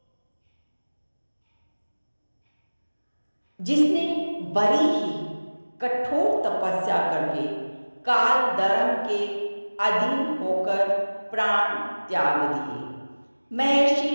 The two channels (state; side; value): inverted; both; correlation -1.00